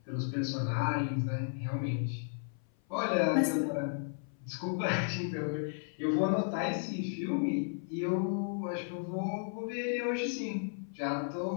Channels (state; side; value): silent; right; 55 dB below the other